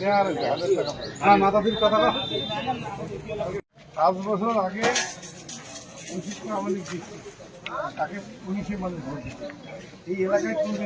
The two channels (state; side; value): identical; both; correlation 1.00